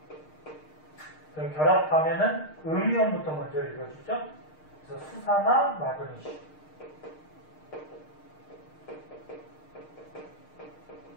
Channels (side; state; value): right; late; 6.5 ms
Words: 그럼 결합하면은 음이온부터 먼저 읽어주죠. 그래서 수산화 마그네슘.